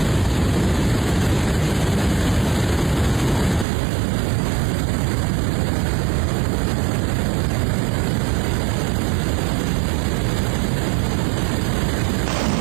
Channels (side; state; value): left; drops out; at 3.7 s